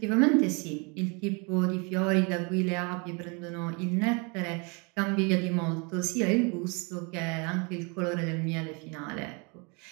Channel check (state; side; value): quieter; left; 31.6 dB